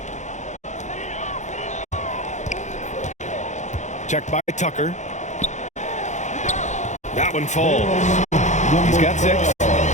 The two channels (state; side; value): late; right; 0.34 ms